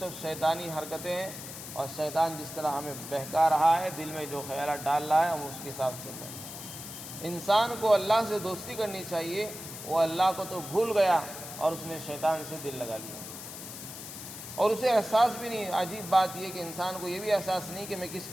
شیطانی حرکتیں ہیں، اور شیطان جس طرح ہمیں بہکا رہا ہے، دل میں جو خیالات ڈال رہا ہے ہم اس کے حساب سے چل رہے ہیں۔ انسان کو اللہ سے دوستی کرنی چاہیے، وہ اللہ کو تو بھول گیا اور اس نے شیطان سے دل لگا لیا، اور اسے احساس بھی نہیں۔ عجیب بات یہ کہ انسان کو یہ بھی احساس نہیں کہ میں کس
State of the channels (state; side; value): noise; left; hiss, 11 dB below the sound